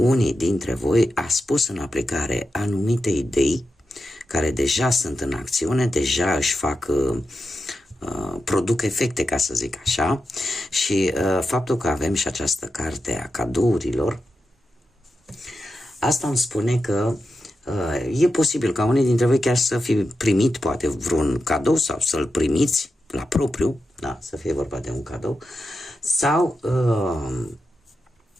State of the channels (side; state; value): both; normal; correlation 0.89